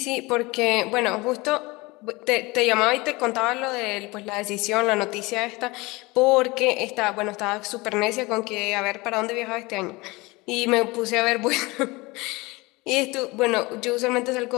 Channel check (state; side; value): quieter; right; 23.3 dB